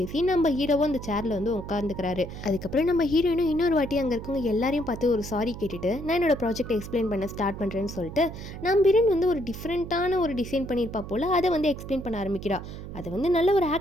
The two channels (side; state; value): right; noise; hum, 11 dB below the sound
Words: நம்ம ஹீரோவும் அந்த சேரில் வந்து உட்காந்துக்கிறாரு. அதுக்கப்புறம் நம்ம ஹீரோயினும் இன்னொரு வாட்டி அங்கே இருக்கவங்க எல்லாரையும் பார்த்து ஒரு சாரி கேட்டுட்டு நான் என்னோட ப்ராஜெக்ட் எக்ஸ்பிளைன் பண்ண ஸ்டார்ட் பண்ணுறேன்னு சொல்லிட்டு நம்ம ஹீரோயின் வந்து ஒரு டிஃப்ரெண்ட்டான ஒரு டிசைன் பண்ணியிருப்பா போல் அதை வந்து எக்ஸ்பிளைன் பண்ண ஆரம்பிக்கிறா. அதை வந்து நல்ல ஒரு